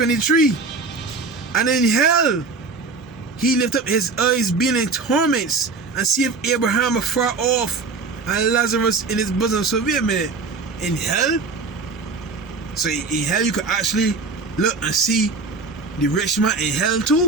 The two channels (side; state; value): left; quieter; 4.1 dB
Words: And in hell he lift up his eyes, being in torments, and seeth Abraham afar off, and Lazarus in his bosom. So wait a minute, in hell? So in hell you could actually look and see the rich man in hell